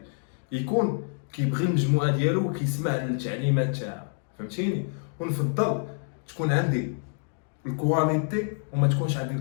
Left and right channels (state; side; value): silent; right; 60 dB below the other